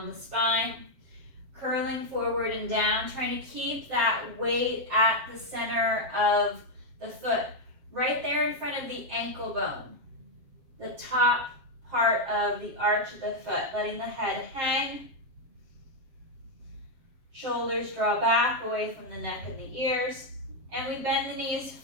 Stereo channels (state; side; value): late; left; 7.6 ms